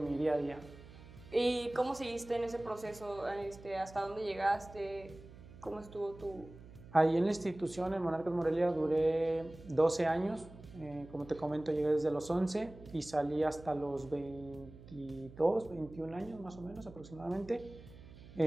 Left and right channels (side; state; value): right; noise; hum, 18 dB below the sound